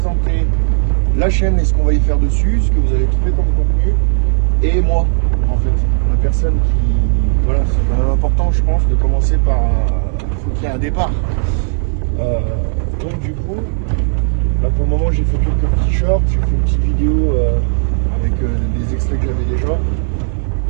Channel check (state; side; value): silent; left; digital silence